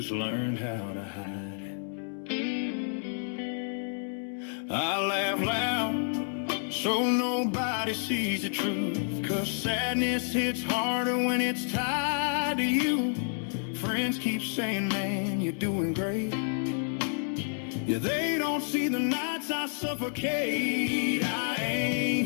learned how to hide it. I laugh loud so nobody sees the truth, 'cause sadness hits harder when it's tied to you. Friends keep saying, man, you're doing great. Yeah, they don't see the nights I suffocate. I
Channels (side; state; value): right; silent; 58 dB below the other